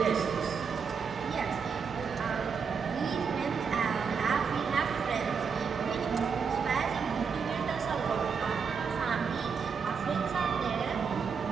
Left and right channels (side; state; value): left; quieter; 6.0 dB